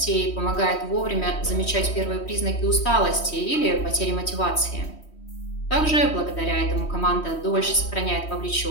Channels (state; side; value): late; right; 3.1 ms